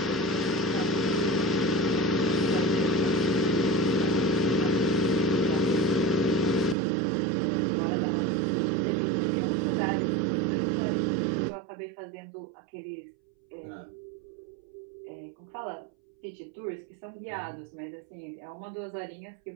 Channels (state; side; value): drops out; left; at 6.8 s